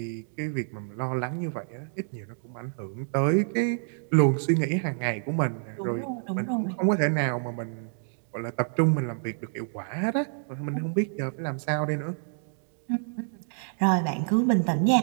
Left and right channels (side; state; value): left; silent; digital silence